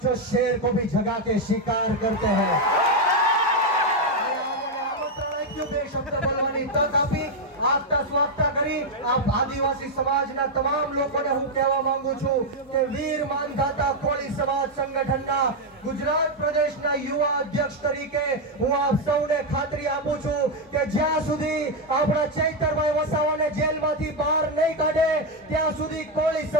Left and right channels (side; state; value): both; normal; correlation 0.03